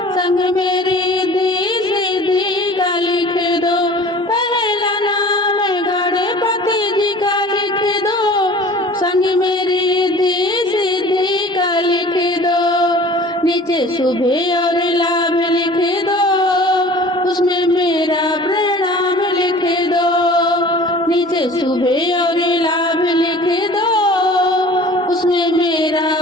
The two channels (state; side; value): normal; both; correlation 0.45